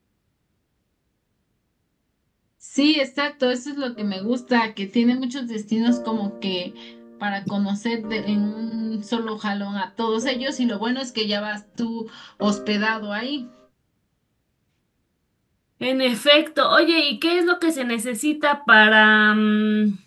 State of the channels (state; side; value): identical; both; correlation 1.00